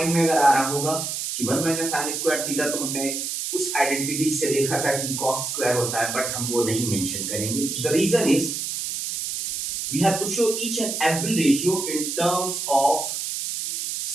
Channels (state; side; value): noise; right; hiss, 4 dB below the sound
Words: में अगर आ रहा होगा कि 1 माइनस साइन स्क्वायर थीटा तो हमने उस आइडेंटिटी से देखा था कि cos स्क्वायर होता है, बट हम वो नहीं मेंशन करेंगे। The reason is we have to show each and every ratio in terms of